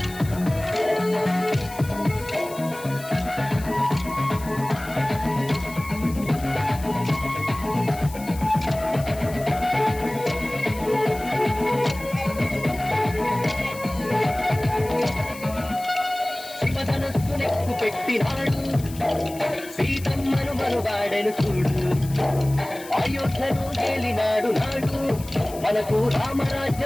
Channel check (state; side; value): noise; left; hiss, 17 dB below the sound